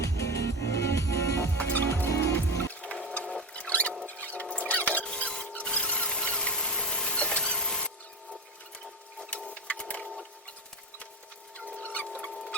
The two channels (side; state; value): both; normal; correlation 0.22